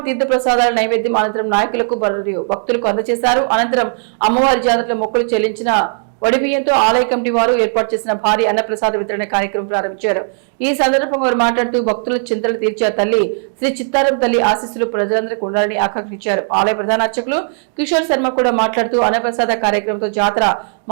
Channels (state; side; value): silent; left; 69 dB below the other